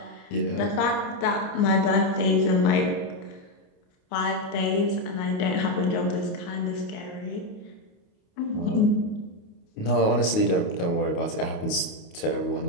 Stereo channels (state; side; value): late; right; 28 ms